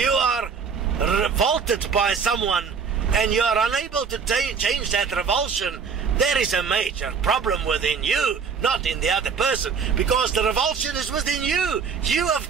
are revolted by someone and you are unable to change that revulsion, There is a major problem within you, not in the other person, because the revulsion is within you. You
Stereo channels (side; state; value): left; quieter; 6.0 dB